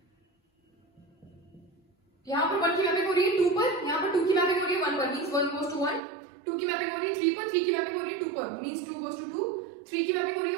यहाँ पर 1 की मैपिंग हो रही है 2 पर, यहाँ पर 2 की मैपिंग हो रही है 1 पर, मींस 1 goes to 1, 2 की मैपिंग हो रही है 3 पर, 3 की मैपिंग हो रही है 2 पर, मींस 2 goes to 2, 3 की मैपिंग हो रही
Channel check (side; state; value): left; drops out; at 6.0 s